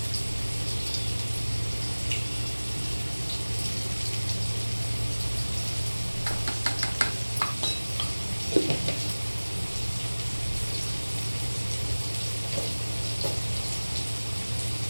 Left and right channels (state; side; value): inverted; both; correlation -1.00